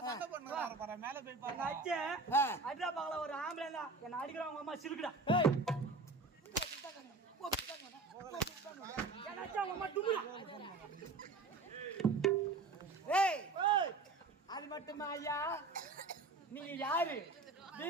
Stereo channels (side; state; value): left; quieter; 3.5 dB